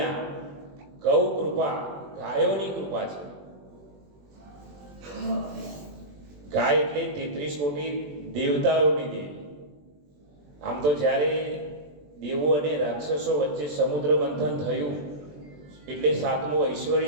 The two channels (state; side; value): late; left; 21 ms